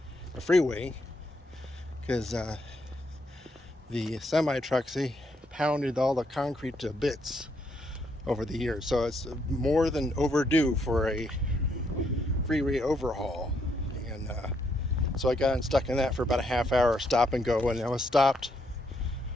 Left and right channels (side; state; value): both; normal; correlation 0.75